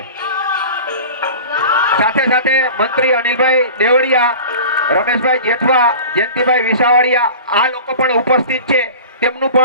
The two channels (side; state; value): both; inverted; correlation -0.38